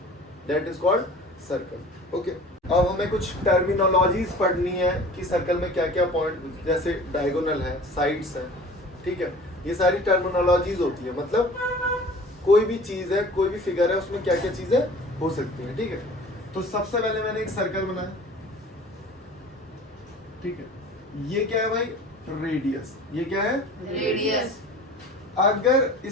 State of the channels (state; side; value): normal; both; correlation 0.43